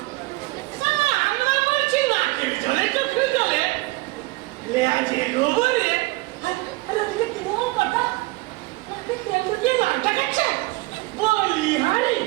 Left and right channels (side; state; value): left; quieter; 21.9 dB